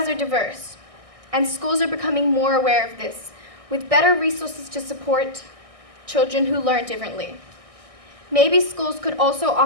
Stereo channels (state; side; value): late; left; 1.6 ms